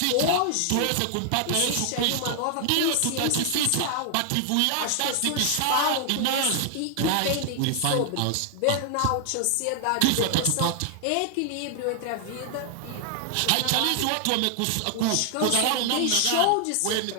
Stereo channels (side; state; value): both; different; correlation 0.00